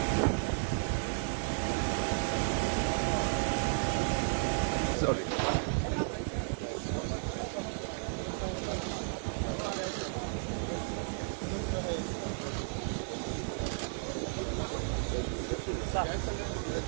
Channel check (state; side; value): silent; left; 55 dB below the other